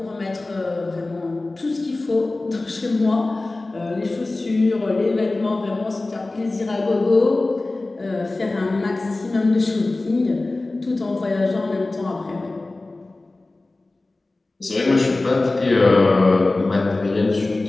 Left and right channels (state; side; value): quieter; right; 3.1 dB